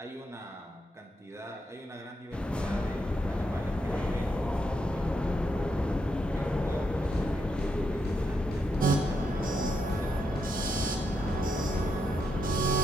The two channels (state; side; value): normal; both; correlation 0.81